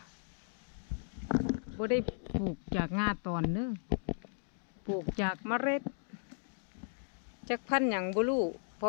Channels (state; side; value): silent; right; digital silence